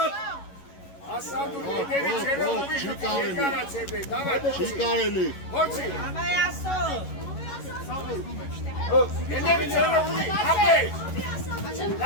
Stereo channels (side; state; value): right; late; 11 ms